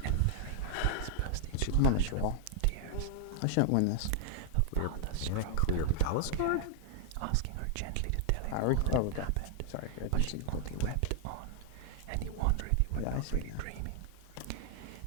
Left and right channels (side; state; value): both; different; correlation -0.01